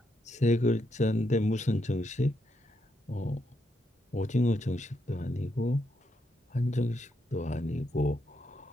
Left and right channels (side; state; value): both; normal; correlation 0.80